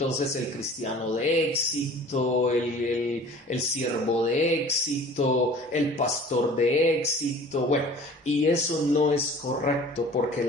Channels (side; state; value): both; normal; correlation 0.46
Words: el cristiano de éxito, el siervo de éxito, el pastor de éxito, bueno, y eso no es correcto porque